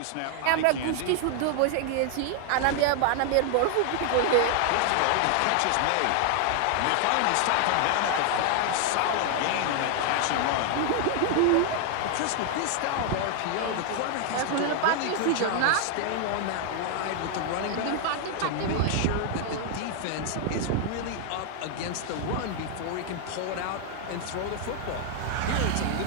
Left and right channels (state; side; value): different; both; correlation 0.00